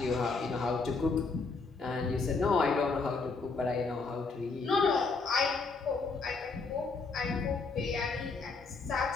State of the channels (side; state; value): right; quieter; 4.2 dB